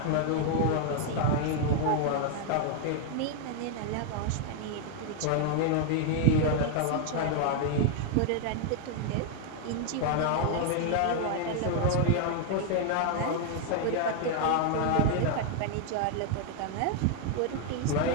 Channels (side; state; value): both; different; correlation 0.00